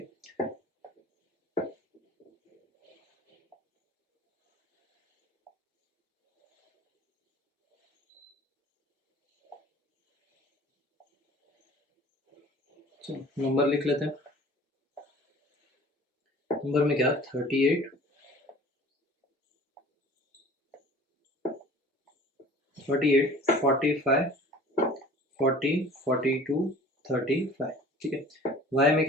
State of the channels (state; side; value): normal; both; correlation 0.46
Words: चलो नंबर लिख लेते हैं। नंबर में क्या 38 45 40 42 35। ठीक है, y में